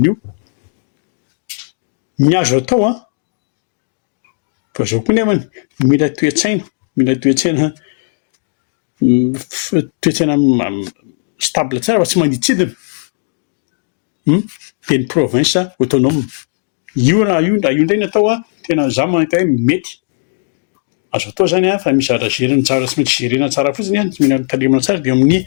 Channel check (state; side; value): silent; right; digital silence